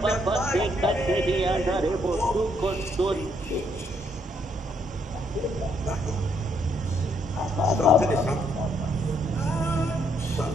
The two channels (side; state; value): both; normal; correlation 0.72